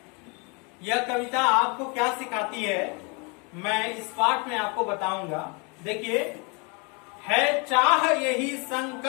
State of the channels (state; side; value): quieter; right; 31.9 dB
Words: यह कविता आपको क्या सिखाती है, मैं इस पाठ में आपको बताऊंगा। देखिए, है चाह यही,